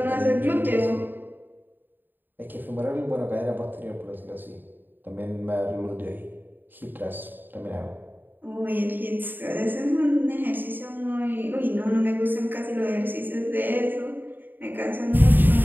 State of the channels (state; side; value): late; left; 0.092 ms